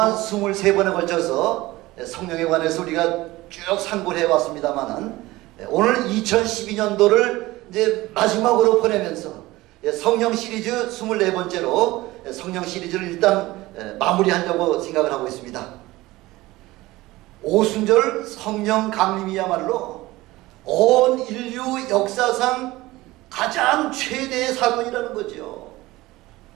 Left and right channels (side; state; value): left; quieter; 18.9 dB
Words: 23번에 걸쳐서 성령에 관해서 우리가 쭉 상고를 해왔습니다만은 오늘 2012년도를 이제 마지막으로 보내면서 성령 시리즈 24번째로 성령 시리즈를 일단 마무리하려고 생각을 하고 있습니다. 오순절 성령 강림이야말로 온 인류 역사상 가장 최대의 사건이라는 거죠.